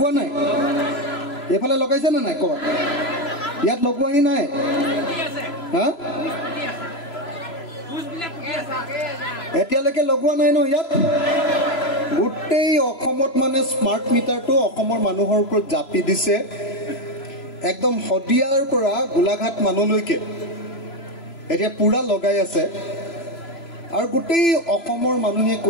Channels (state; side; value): late; right; 3.0 ms